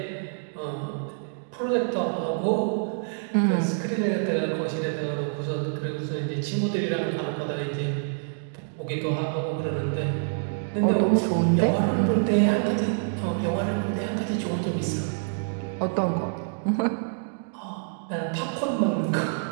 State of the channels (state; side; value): silent; left; digital silence